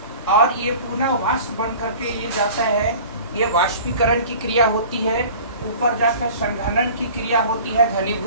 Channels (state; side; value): inverted; both; correlation -0.43